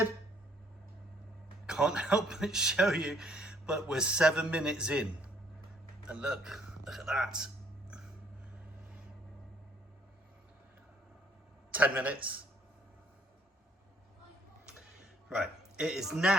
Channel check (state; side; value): normal; both; correlation 0.64